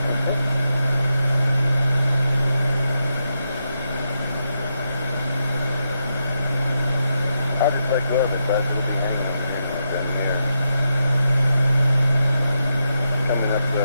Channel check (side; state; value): both; inverted; correlation -0.84